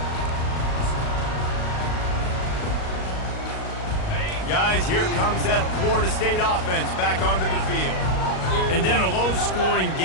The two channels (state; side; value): late; right; 38 ms